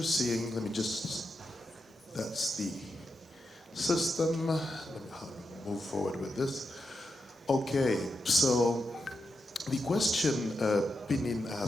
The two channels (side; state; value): both; normal; correlation 0.87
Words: seeing, let me just, that's the system. Let me move forward with this. Okay, so the question Pinin